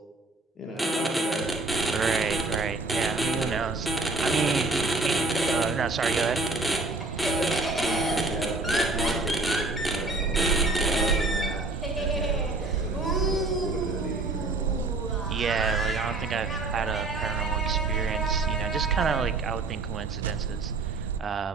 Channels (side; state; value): left; quieter; 3.3 dB